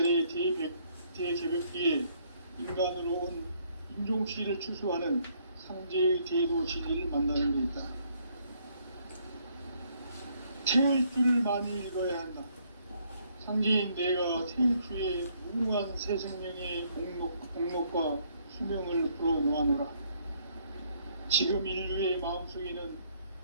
대개벽기에 인간으로 온 인종시를 추수하는 상제의 대도 진리를 만나는 데 있다. 태울 줄을 많이 읽어야 한다. 상제인 내가 태울 주의 무궁한 새 생명의 목록과 수명을 풀어놓아노라. 지금 인류의 마음속에는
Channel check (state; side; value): inverted; both; correlation -0.68